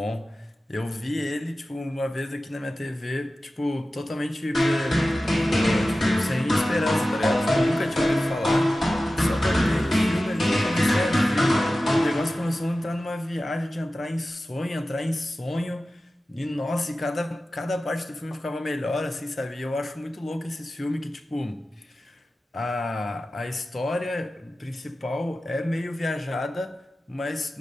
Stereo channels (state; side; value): normal; both; correlation 0.95